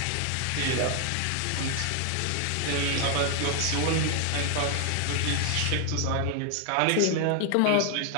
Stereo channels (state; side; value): different; both; correlation 0.00